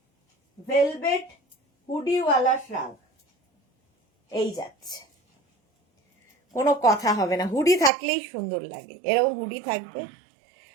ভেলভেট হুডিওয়ালা শ্রাগ, এই যাচ্ছে, কোনো কথা হবে না, হুডি থাকলেই সুন্দর লাগে, এরকম হুডি থাকবে।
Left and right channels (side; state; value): left; drops out; at 7.9 s